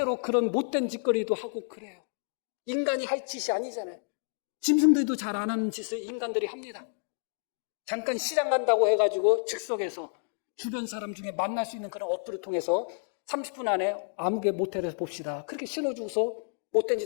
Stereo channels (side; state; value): right; silent; digital silence